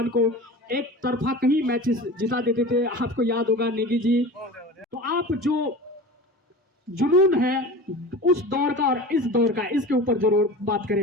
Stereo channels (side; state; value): both; normal; correlation 0.34